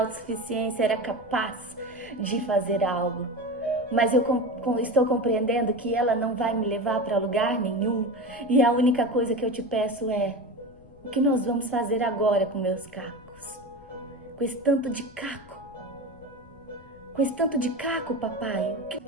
era capaz de fazer algo. Mas eu estou compreendendo que ela não vai me levar para lugar nenhum. E a única coisa que eu te peço é, o que nós vamos fazer agora com meus cacos? Com esse tanto de caco. Com esse tanto de caco, papai.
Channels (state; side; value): noise; left; rumble, 24 dB below the sound